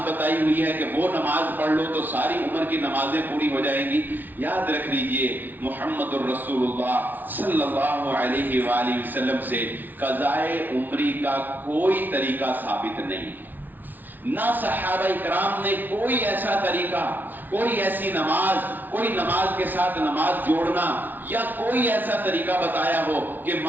بتائی ہوئی ہے کہ وہ نماز پڑھ لو تو ساری عمر کی نمازیں پوری ہو جائیں گی۔ یاد رکھ لیجئے محمد الرسول اللہ صلی اللہ علیہ وآلہ وسلم سے قضائے عمری کا کوئی طریقہ ثابت نہیں ہے، نہ صحابہ کرام نے کوئی ایسا طریقہ، کوئی ایسی نماز، کوئی نماز کے ساتھ نماز جوڑنا یا کوئی ایسا طریقہ بتایا ہو کہ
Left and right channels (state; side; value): late; left; 0.086 ms